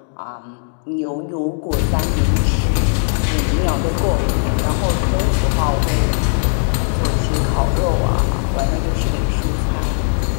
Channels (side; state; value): right; silent; 67 dB below the other